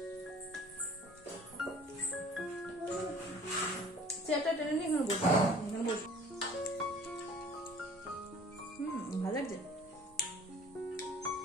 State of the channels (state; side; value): normal; both; correlation 0.50